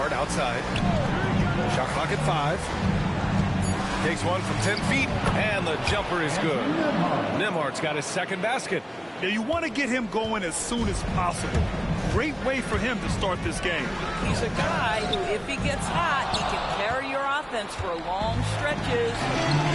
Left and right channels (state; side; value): identical; both; correlation 1.00